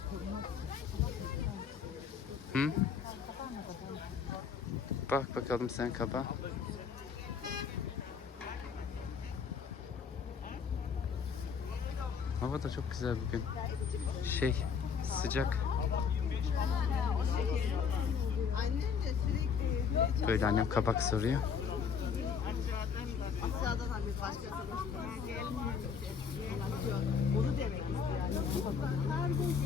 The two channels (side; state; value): right; quieter; 6.3 dB